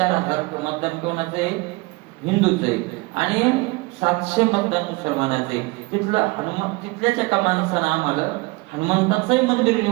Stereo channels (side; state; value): left; quieter; 24.4 dB